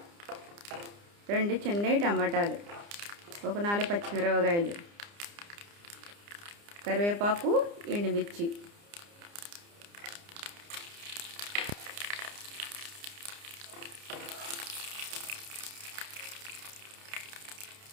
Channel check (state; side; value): late; left; 29 ms